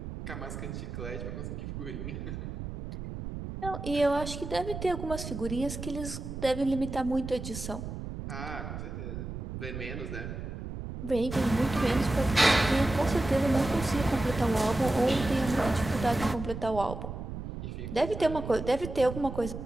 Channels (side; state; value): right; noise; rumble, 7 dB below the sound